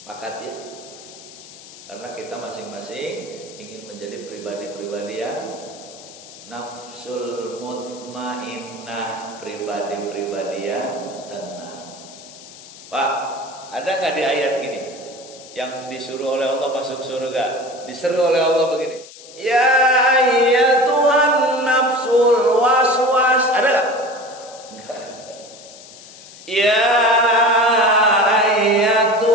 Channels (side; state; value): left; noise; hiss, 18 dB below the sound